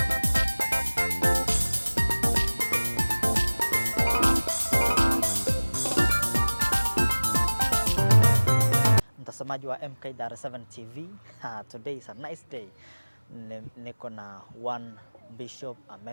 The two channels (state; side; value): inverted; both; correlation -1.00